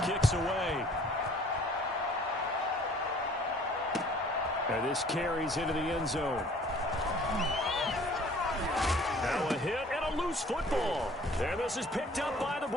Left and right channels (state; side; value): normal; both; correlation 0.53